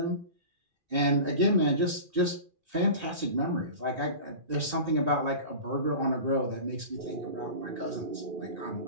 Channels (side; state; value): left; late; 2.4 ms